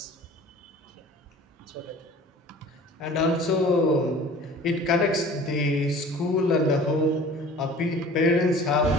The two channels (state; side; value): normal; both; correlation 0.45